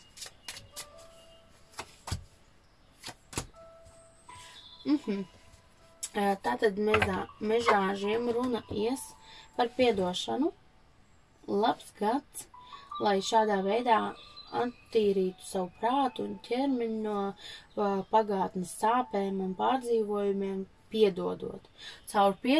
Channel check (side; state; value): both; identical; correlation 1.00